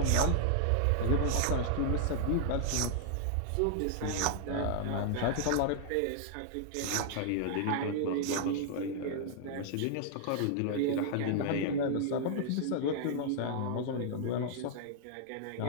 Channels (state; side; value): different; both; correlation -0.01